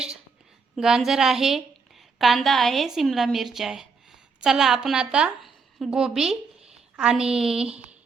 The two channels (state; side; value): quieter; left; 4.9 dB